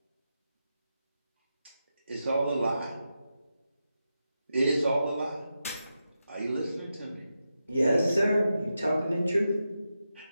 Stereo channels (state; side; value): inverted; both; correlation -0.89